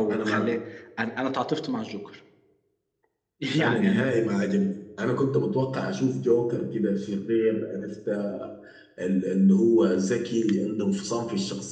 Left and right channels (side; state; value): both; identical; correlation 1.00